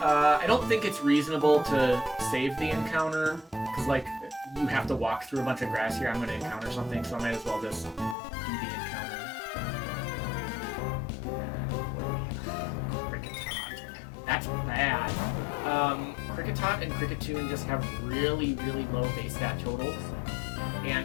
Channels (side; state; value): right; drops out; at 8.2 s